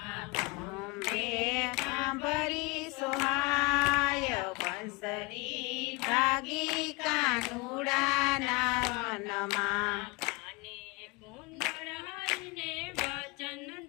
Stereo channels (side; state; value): right; quieter; 26.9 dB